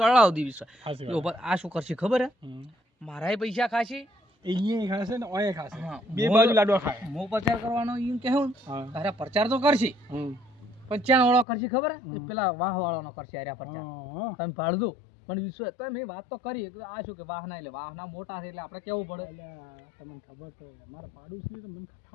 દી વિશ્વાસ હાચી એ વાત. ઉભા આ શું કરશે ખબર હે હમ. મારાય પૈસા ખાશી અહીંયા ખાશે ને ઓય ખાશે. હા, બે મોર- બાજુ લાડવા ખાય. હું પ્રચાર કરવાનો એમ કહેવું હા તારે પ્રચાર તો કરશી હમ. પણ ચાણ વાળો કરશી ખબર હે એ પેલા વાહ વાળાનો કરશે આર્યા પ્રચાર હા. તમે ભાળજો મને વિશ્વાસ તો મેં વાત તો કરી કે આ શું કે વાહના એટલે વાહના મોટા છે એટલે આપણે કેવું પડે અલ્યા, તમને ખબર તો મારા પાડોશી તો મને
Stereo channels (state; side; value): drops out; right; at 11.5 s